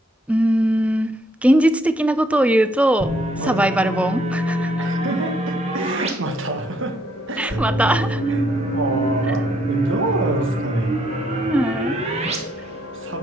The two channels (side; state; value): both; normal; correlation 0.71